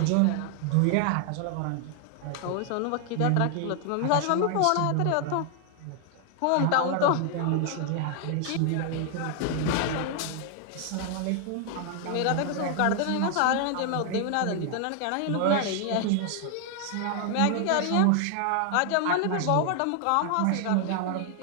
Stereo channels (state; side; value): different; both; correlation 0.00